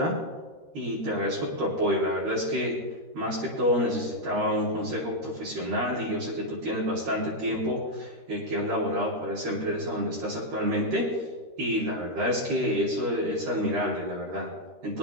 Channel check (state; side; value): late; left; 13 ms